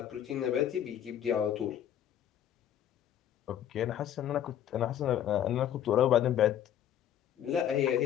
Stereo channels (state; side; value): quieter; right; 10.4 dB